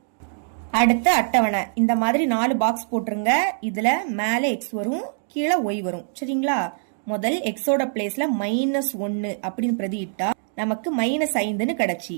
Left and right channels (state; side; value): silent; left; digital silence